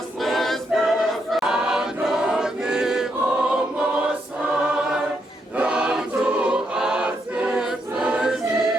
perfect, and on the almost high, down to us the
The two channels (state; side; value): normal; both; correlation 0.78